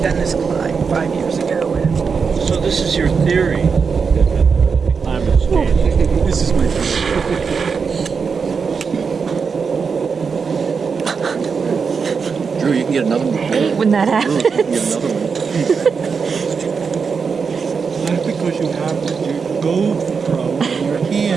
done this climb 5 years ago. So this is your theory that the climate's changing. This is my theory. Drew, you can get another one. When that happens. That's because you have your GoPro in your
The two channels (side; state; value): left; quieter; 5.6 dB